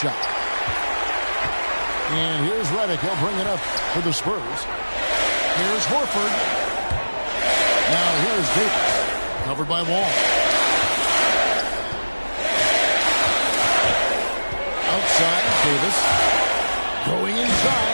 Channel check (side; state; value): both; inverted; correlation -1.00